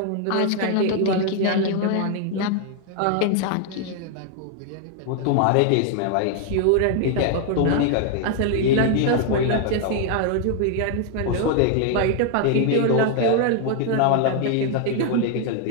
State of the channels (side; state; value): both; different; correlation 0.00